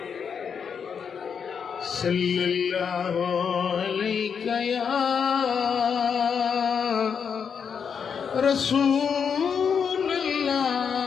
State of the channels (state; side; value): quieter; right; 6.8 dB